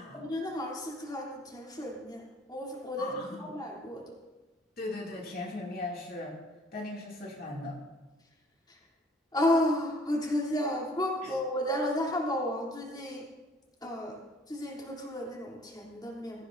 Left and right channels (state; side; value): normal; both; correlation 0.57